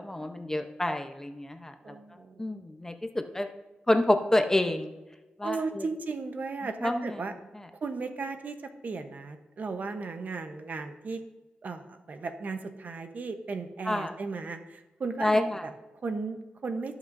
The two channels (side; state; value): both; normal; correlation 0.92